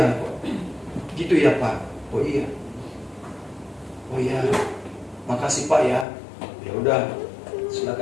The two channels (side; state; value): right; drops out; at 6.1 s